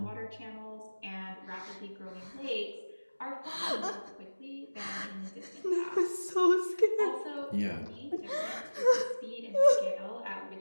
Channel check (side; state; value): both; inverted; correlation -1.00